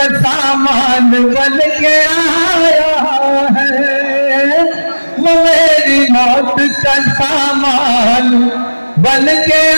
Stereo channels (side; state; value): both; inverted; correlation -1.00